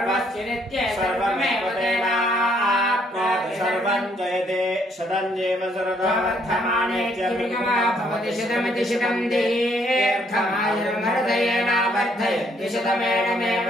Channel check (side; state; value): both; normal; correlation 0.68